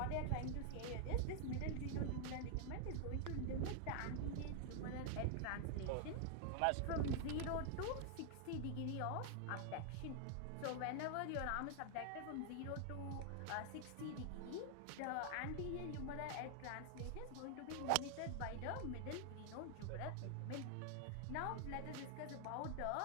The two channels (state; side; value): different; both; correlation 0.00